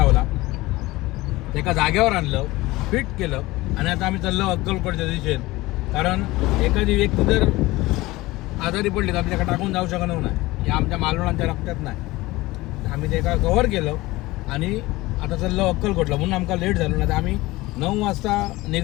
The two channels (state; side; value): quieter; right; 19.7 dB